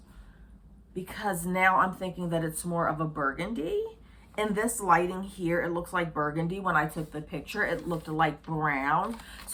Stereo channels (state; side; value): identical; both; correlation 1.00